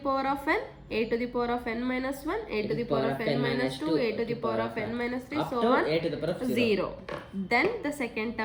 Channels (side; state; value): both; identical; correlation 1.00